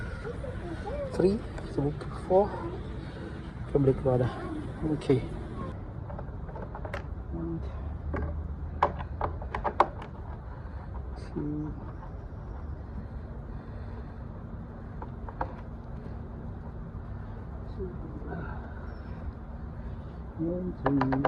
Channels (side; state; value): both; identical; correlation 1.00